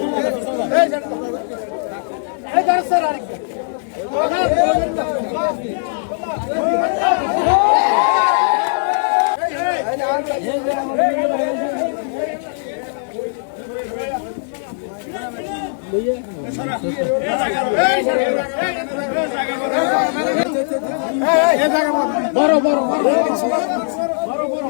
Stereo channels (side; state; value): right; silent; 67 dB below the other